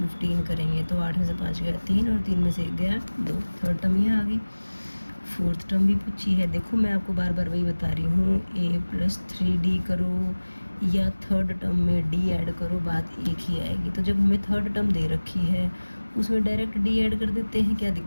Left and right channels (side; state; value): both; inverted; correlation -1.00